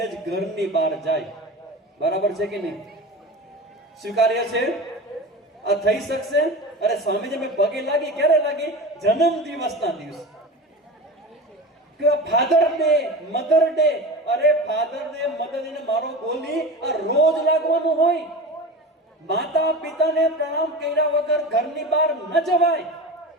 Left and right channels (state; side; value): normal; both; correlation 0.30